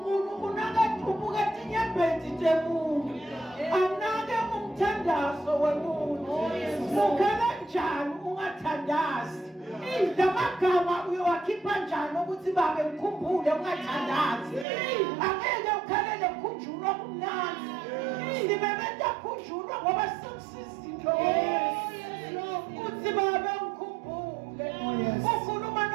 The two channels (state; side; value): drops out; left; at 14.7 s